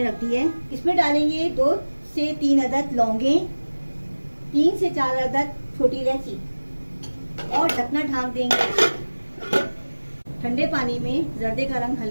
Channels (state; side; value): inverted; both; correlation -1.00